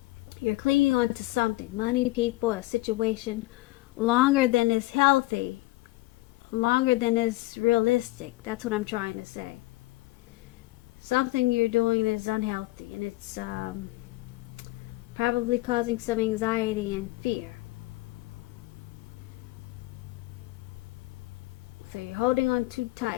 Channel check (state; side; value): quieter; right; 19.9 dB